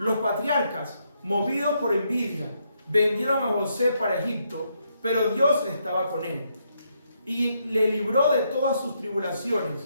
patriarcas, movidos por envidia, vendieron a José para Egipto, pero Dios estaba con él y le libró de todas sus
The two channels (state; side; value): inverted; both; correlation -0.77